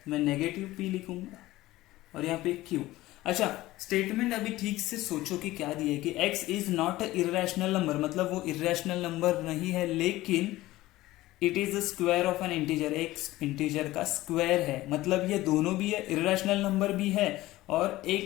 मैं नेगेटिव p लिखूंगा और यहाँ पे q। अच्छा स्टेटमेंट अभी ठीक से सोचो कि क्या दिया है कि x is not a irrational number, मतलब वो इरेशनल नंबर नहीं है, लेकिन it is the square of N integer, एक इंटीजर का स्क्वायर है, मतलब ये दोनों भी है, इरेशनल नंबर भी है और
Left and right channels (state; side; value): quieter; right; 17.2 dB